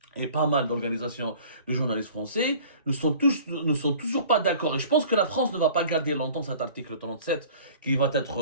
et pas mal d'organisations de journalistes français ne sont toujours pas d'accord. Et je pense que la France ne va pas garder longtemps cet article 37 qui va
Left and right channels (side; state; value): both; inverted; correlation -0.47